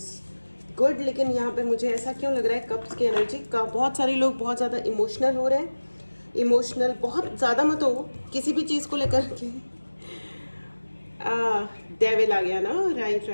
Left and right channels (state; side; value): inverted; both; correlation -1.00